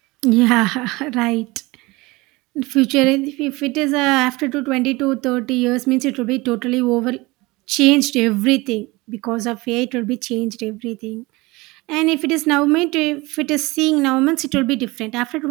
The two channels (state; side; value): quieter; left; 22.5 dB